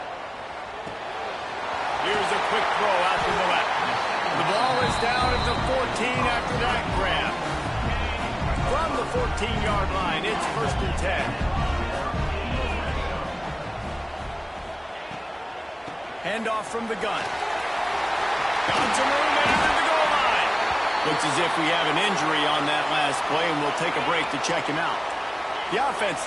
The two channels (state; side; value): identical; both; correlation 1.00